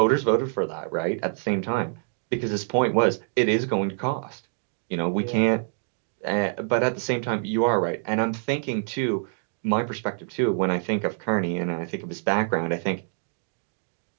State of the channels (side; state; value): left; silent; 61 dB below the other